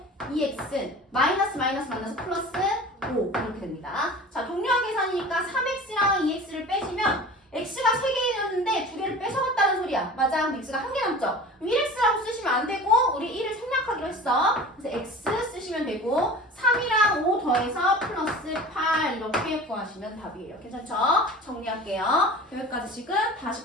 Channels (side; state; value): both; normal; correlation 0.39